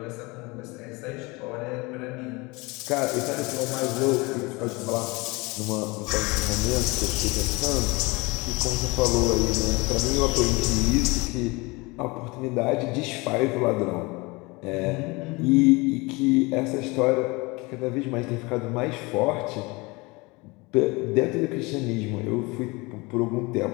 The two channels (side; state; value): right; quieter; 25.1 dB